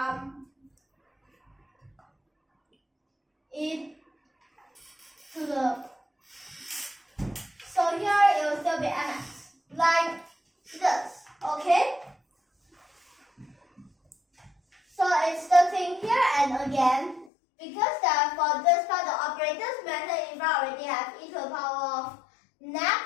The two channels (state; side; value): drops out; right; at 17.3 s